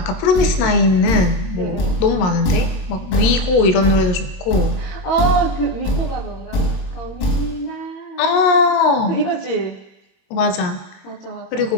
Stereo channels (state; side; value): late; right; 22 ms